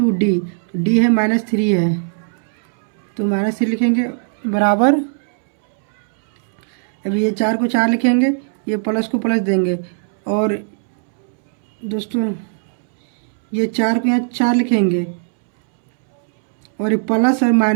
डी, डी है -3 है तो -3 लिखेंगे बराबर। अब ये 4 को 4 लिखेंगे, ये प्लस को प्लस देंगे। और दोस्तों ये 4 को यहाँ 4 लिखेंगे और ये प्लस और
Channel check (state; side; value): silent; left; 67 dB below the other